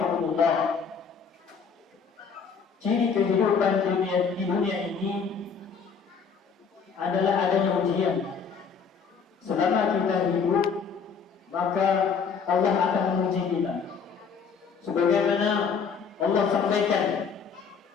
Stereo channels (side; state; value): right; quieter; 5.9 dB